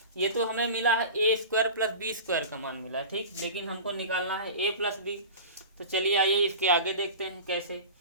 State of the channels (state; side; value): inverted; both; correlation -0.34